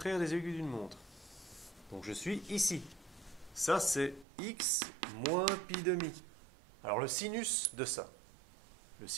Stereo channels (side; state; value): left; drops out; at 4.2 s